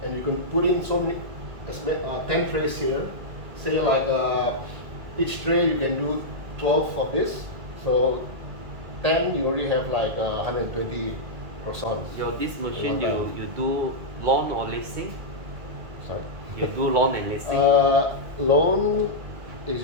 And you can put in so many, 10 trays here. Say like each tray you can do 12 of this. So 10 you already have like 120 croissants. This machine, One time. you do loan or leasing? Sorry. You do loan and leasing? Loan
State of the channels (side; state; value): left; late; 2.0 ms